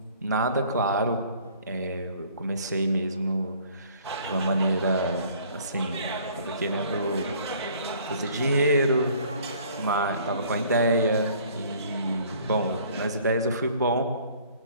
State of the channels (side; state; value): both; inverted; correlation -0.55